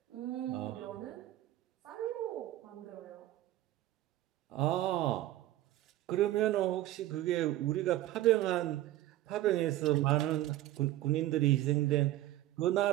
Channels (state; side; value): quieter; left; 14.8 dB